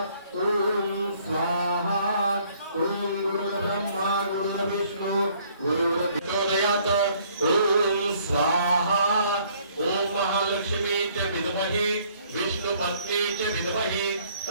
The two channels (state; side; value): inverted; both; correlation -0.62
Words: ओम स्वाहा ओम गुरुर्ब्रह्मा गुरुर्विष्णु गुरुर्देवदयात ओम स्वाहा ओम महालक्ष्मी च विद्महे विष्णुपत्नी च विद्महे